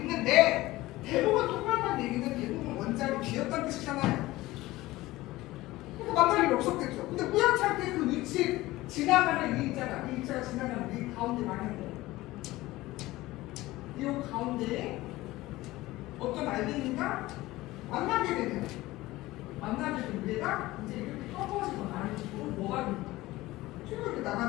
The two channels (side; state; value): right; quieter; 18.3 dB